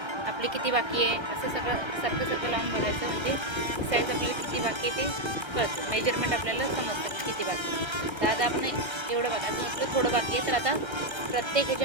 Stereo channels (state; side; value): late; left; 1.3 ms